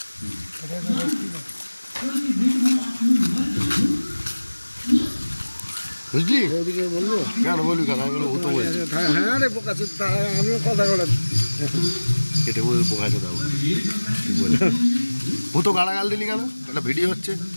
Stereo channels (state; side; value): inverted; both; correlation -1.00